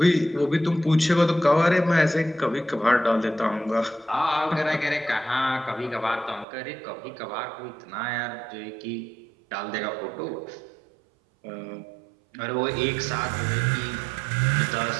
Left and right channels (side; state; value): left; drops out; at 6.5 s